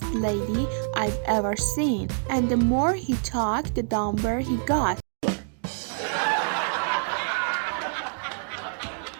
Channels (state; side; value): silent; left; 61 dB below the other